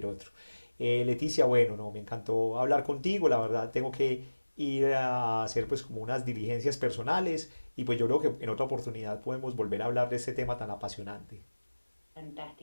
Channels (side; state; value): both; inverted; correlation -1.00